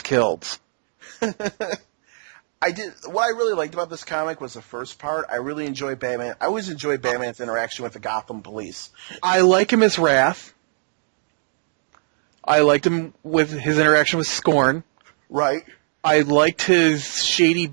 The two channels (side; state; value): left; silent; digital silence